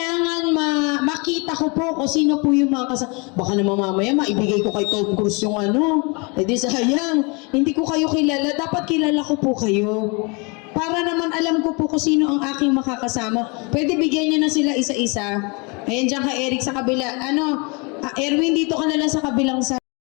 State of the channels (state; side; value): quieter; right; 30.6 dB